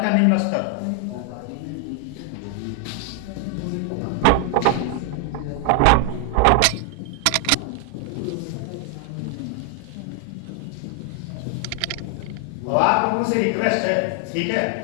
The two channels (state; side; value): different; both; correlation 0.00